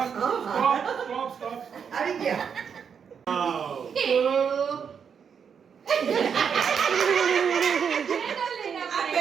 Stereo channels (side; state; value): left; quieter; 7.0 dB